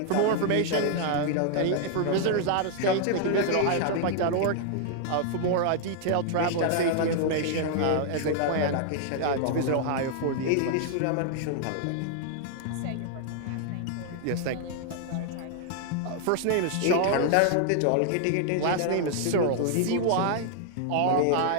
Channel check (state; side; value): different; both; correlation 0.00